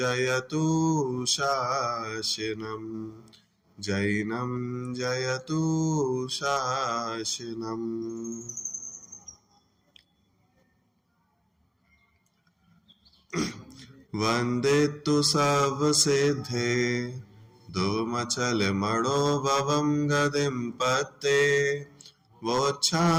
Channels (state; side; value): identical; both; correlation 1.00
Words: शासनम् जैनं जयतु शासनम्। वन्दे तु सर्वसिद्धे धूमचल मणोभवं गदिं पत्ते